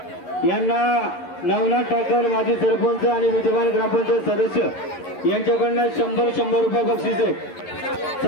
यांना नवनाथ ठाकर माजी सरपंच आणि विद्यमान ग्रामपंचायत सदस्य यांच्याकडनं 100 रुपये बक्षीस आहे।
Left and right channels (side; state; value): right; late; 11 ms